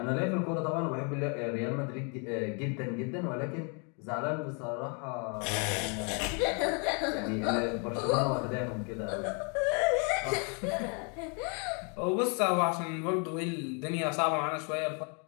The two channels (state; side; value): quieter; right; 36.7 dB